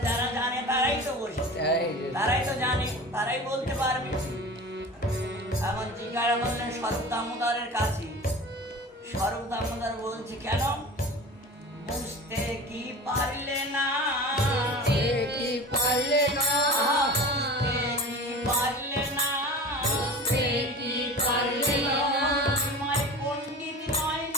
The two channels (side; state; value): both; normal; correlation 0.36